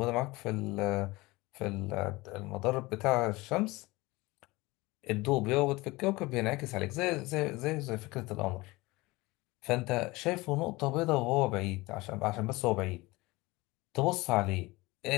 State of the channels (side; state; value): right; quieter; 21.7 dB